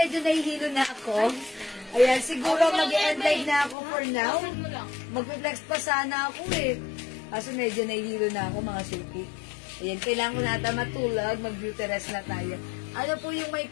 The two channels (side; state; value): right; drops out; at 3.8 s